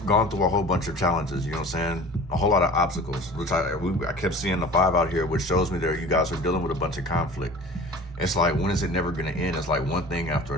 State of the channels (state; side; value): normal; both; correlation 0.40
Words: gone through a whole bunch of challenges, you know what I'm saying, a whole lot of obstacles, which I kept seeing the 5 out here, which shows me that you guys are dealing with a bunch of conflict. It's like, when is it never going to end? It's like one thing after